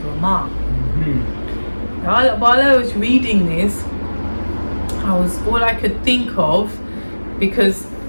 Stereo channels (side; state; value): both; inverted; correlation -1.00